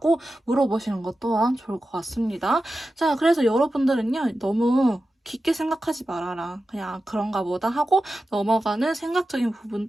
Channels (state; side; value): normal; both; correlation 0.92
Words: 물어보시는 것 또한 좋을 것 같습니다. 자, 그래서 여러분들은요, 너무 깊게 생각하지 말아라. 그냥 그런가 보다 하고 넘어가는 생각적인 부분